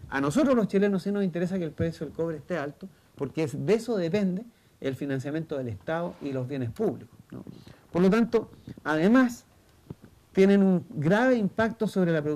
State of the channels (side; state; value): both; identical; correlation 1.00